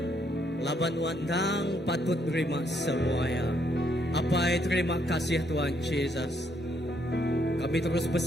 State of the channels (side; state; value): both; normal; correlation 0.72